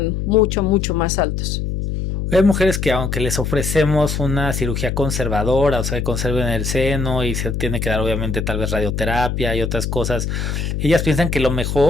mucho, mucho más altos. Hay mujeres que aunque les ofrecemos una cirugía conservadora, o sea, que conserven el seno y se tiene que dar obviamente tal vez radioterapia y otras cosas, ellas piensan que lo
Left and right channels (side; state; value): left; noise; hum, 2 dB below the sound